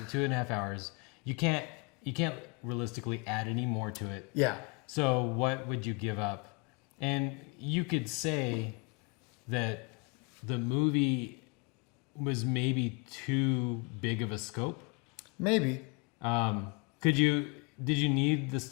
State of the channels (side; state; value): right; quieter; 30.6 dB